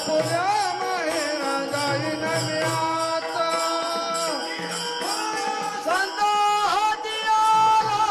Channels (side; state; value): both; identical; correlation 1.00